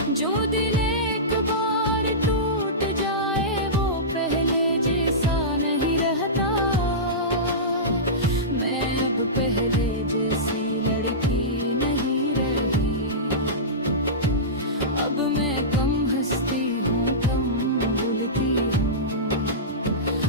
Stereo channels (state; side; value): normal; both; correlation -0.18